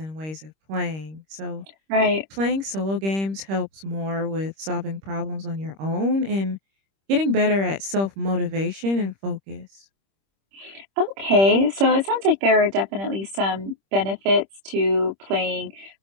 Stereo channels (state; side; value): late; left; 26 ms